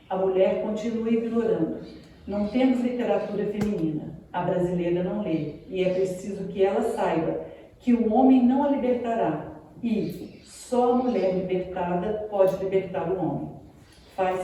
A mulher continua ignorando. Não temos literatura feminina. A brasileira não lê. E é preciso que ela saiba que o homem não a libertará e só a mulher libertada pode libertar o homem.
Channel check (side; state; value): both; identical; correlation 1.00